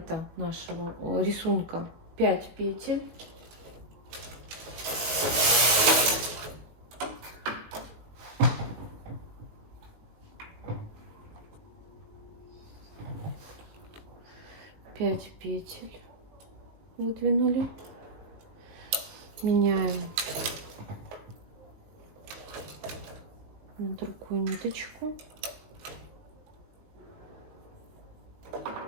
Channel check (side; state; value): left; late; 19 ms